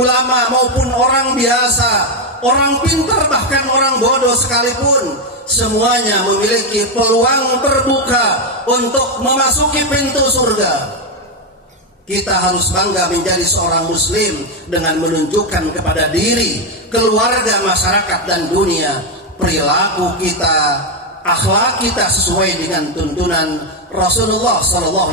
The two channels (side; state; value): both; normal; correlation 0.05